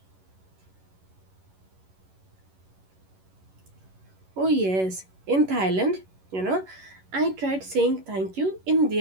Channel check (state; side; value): late; left; 11 ms